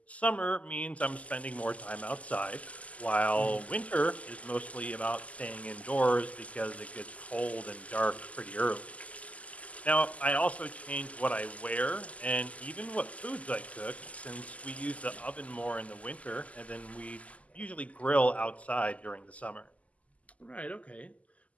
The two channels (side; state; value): right; late; 0.070 ms